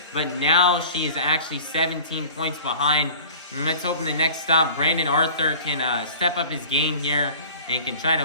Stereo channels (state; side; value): inverted; both; correlation -0.43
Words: but now she is actually 17 points behind. And let's hope in the next stop Brandon Arthur can step up his game here and can try to